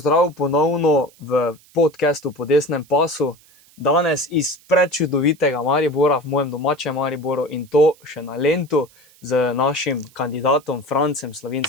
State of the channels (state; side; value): noise; right; hiss, 28 dB below the sound